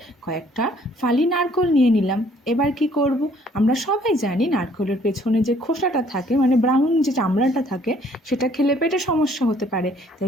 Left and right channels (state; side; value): normal; both; correlation 0.61